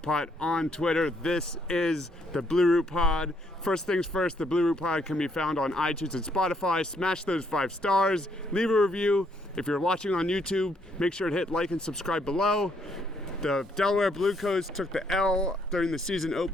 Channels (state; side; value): normal; both; correlation 0.71